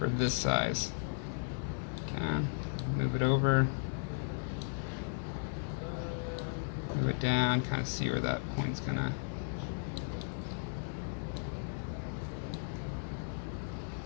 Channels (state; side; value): silent; right; digital silence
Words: this size. Okay. Move it over. Move it down, kind of see where that point's going to.